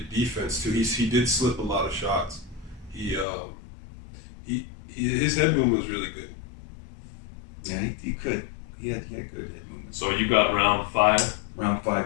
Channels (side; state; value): right; drops out; at 3.2 s